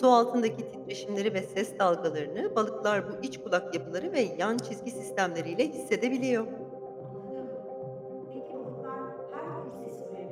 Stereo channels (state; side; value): identical; both; correlation 1.00